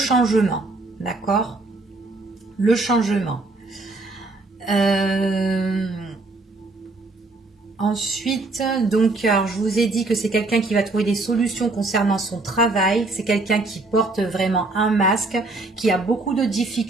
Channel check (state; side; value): quieter; left; 3.2 dB